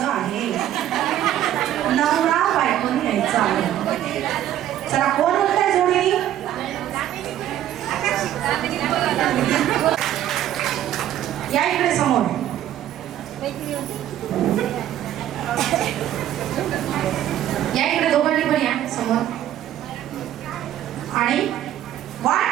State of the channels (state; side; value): quieter; left; 12.0 dB